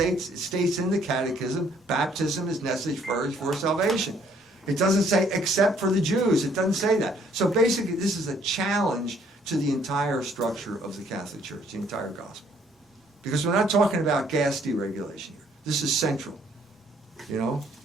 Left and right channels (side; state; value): both; normal; correlation 0.63